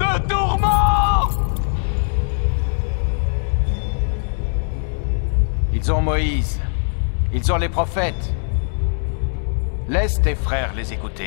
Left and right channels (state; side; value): silent; right; digital silence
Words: tourment. Ils ont Moïse. Ils ont les prophètes. Laisse tes frères les